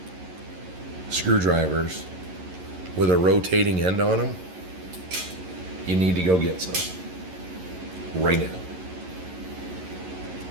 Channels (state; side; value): late; left; 11 ms